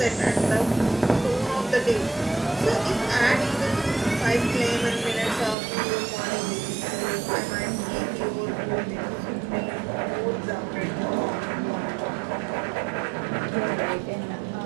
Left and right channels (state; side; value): drops out; left; at 5.6 s